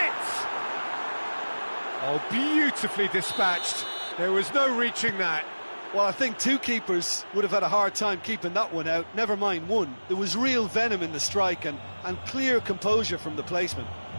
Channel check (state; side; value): inverted; both; correlation -1.00